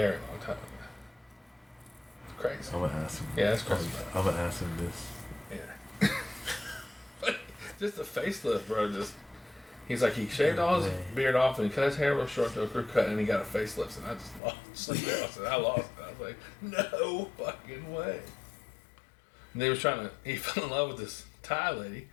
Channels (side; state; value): right; drops out; at 14.4 s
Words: long time ago. It's crazy. I'm gonna ask him. Yeah, that's crazy. I'm gonna ask him this. Yeah. Just the facelift, bro. He's like, he shaved all his beard off and he cut his hair real short to a crew cut and he got a facelift, and I just lost it. I lost it. I was like, no fucking way. And he fell in love with this Thai lady